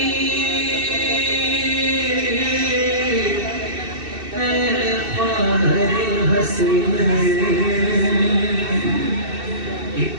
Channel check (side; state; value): left; late; 2.7 ms